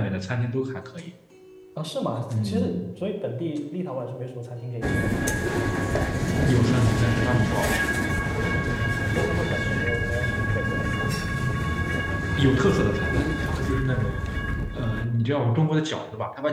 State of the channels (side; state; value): both; identical; correlation 1.00